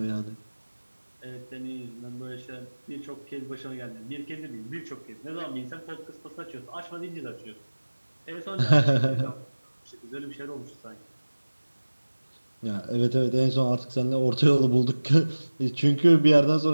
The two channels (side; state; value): both; inverted; correlation -1.00